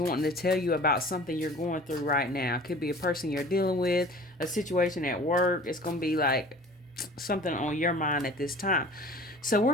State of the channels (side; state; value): both; normal; correlation 0.44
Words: to tell you about something you're going through right now. It could be a person you're dealing with, a situation at work. It's going to be like something on your mind at this time. So we're